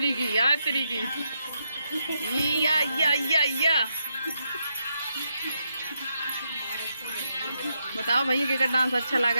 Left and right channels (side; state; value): both; inverted; correlation -0.81